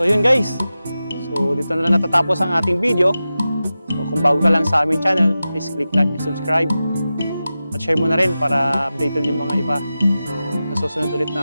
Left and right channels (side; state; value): both; inverted; correlation -0.93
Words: yun guys, so dito na lang natatapos ang ating video. So kung bago ka lang sa aming channel, please click like and subscribe. At share mo na rin para updated yung mga iba. So sa susunod ulit